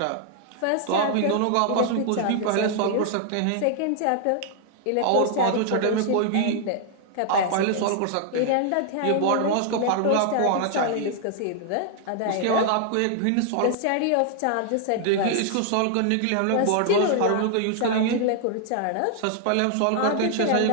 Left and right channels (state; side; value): different; both; correlation -0.01